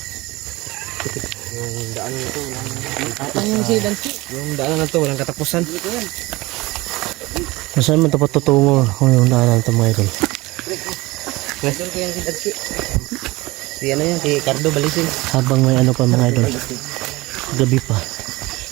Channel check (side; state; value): left; quieter; 21.3 dB